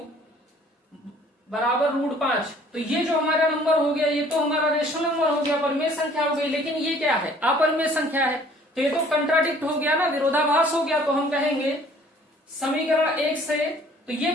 बराबर √5, तो ये जो हमारा नंबर हो गया ये तो हमारा रेशनल नंबर हो गया, परिमेय संख्या हो गई। लेकिन ये क्या है, अपरिमेय संख्या है, तो ये तो कंट्राडिक्ट हो गया ना, विरोधाभास हो गया। तो हम कहेंगे समीकरण 1 से, तो ये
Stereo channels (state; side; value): normal; both; correlation 0.55